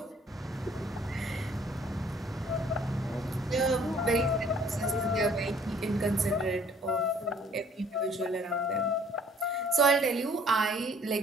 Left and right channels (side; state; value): both; normal; correlation 0.58